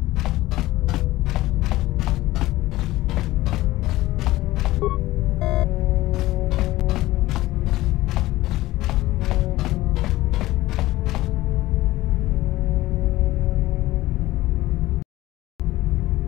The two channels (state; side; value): quieter; right; 17.2 dB